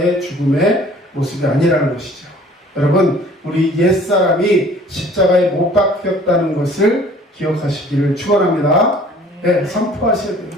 죽음의 모습이 아니라는 것이죠. 여러분, 우리 옛사람이 십자가에 못 박혔다는 것을 기억하시기를 축원합니다. 네, 선포하셔야 돼요.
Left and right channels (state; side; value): normal; both; correlation 0.52